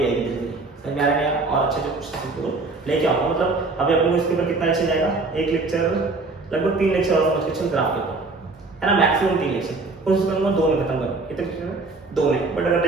आएगी धीरे धीरे। समझ में आ रहा है? और अच्छे क्वेश्चन तुमको लेके आऊंगा। मतलब अभी अपने को इसके ऊपर कितना लेक्चर जाएगा? एक लेक्चर लगभग 3 लेक्चर और समझ के चल ग्राफ के ऊपर, है ना? मैक्सिमम 3 लेक्चर, कोशिश करूंगा 2 में खत्म करने। कितने लेक्चर में? 2 में, बट अगर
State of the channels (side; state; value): left; quieter; 3.6 dB